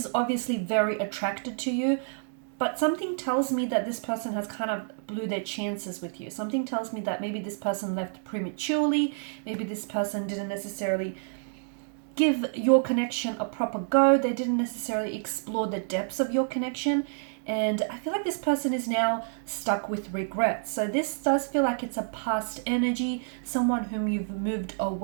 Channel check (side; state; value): left; silent; digital silence